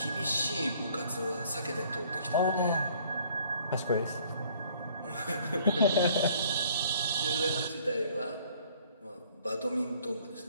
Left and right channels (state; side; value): inverted; both; correlation -0.58